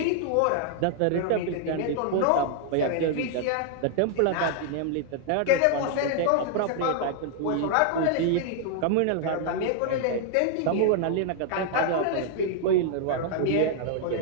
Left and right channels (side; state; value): both; different; correlation -0.01